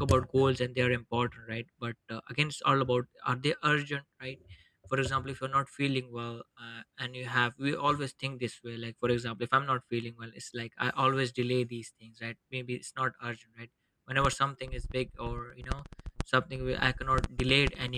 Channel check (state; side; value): identical; both; correlation 1.00